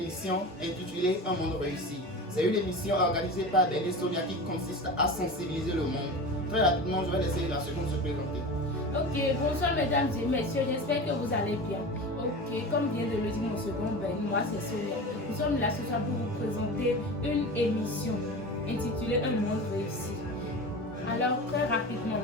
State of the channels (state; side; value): normal; both; correlation 0.31